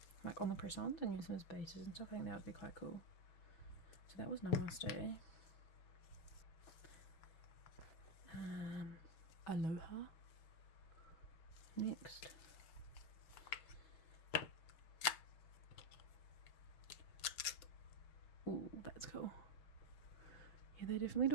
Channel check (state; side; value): late; right; 6.6 ms